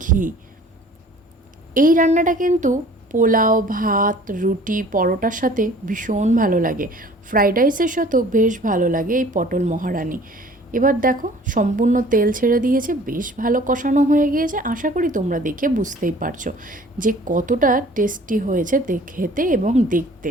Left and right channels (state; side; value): normal; both; correlation 0.50